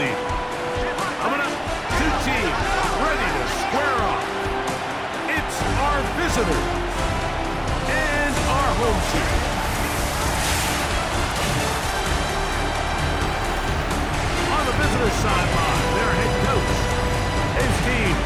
Coming up, two teams ready to square off. It's our visitors and our home team. On the visitors' sideline, their head coach. His team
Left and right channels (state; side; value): identical; both; correlation 1.00